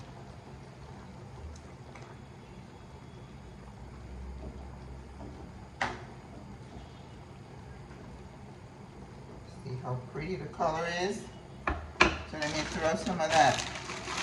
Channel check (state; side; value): identical; both; correlation 1.00